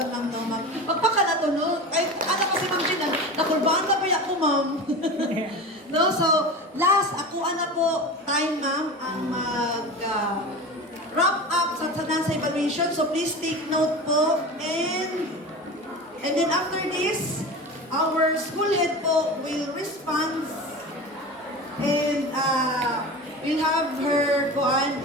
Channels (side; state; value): both; normal; correlation 0.30